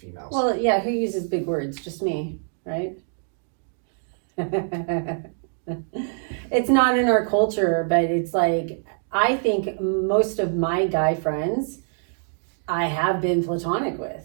females. Well, yeah, who uses big words? Just me, right? It's not in our culture, but it's like, I think most of my guy friends I have been platonic with,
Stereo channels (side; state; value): left; silent; 62 dB below the other